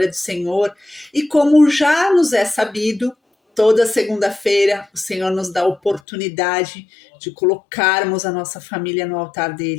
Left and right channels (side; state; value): right; drops out; at 6.0 s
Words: do Senhor, e como já nos é sabido, toda segunda-feira o Senhor nos dá a oportunidade de colocarmos a nossa família no altar